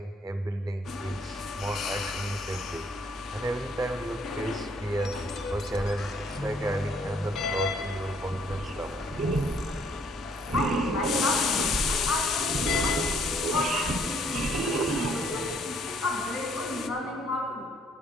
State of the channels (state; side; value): normal; both; correlation 0.65